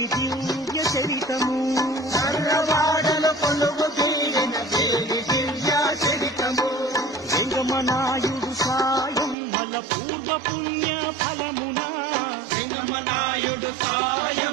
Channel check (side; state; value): left; drops out; at 9.3 s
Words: దివ్య చరితము మర్లవాడలో కొలువు తీరిన దేవి దివ్య చరితము వెంగమనాయుడు సాయం మల పూర్వ పుణ్య ఫలమునా వెంగమనాయుడు